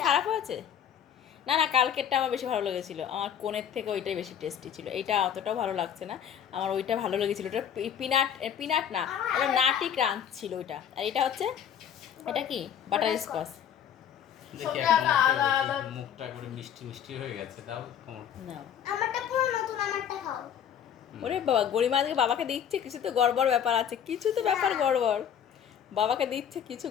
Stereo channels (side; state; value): right; quieter; 9.0 dB